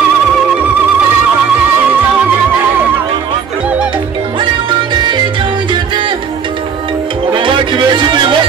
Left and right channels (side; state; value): left; quieter; 6.7 dB